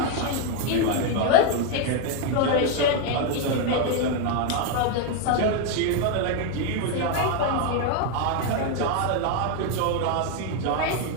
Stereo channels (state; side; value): different; both; correlation 0.01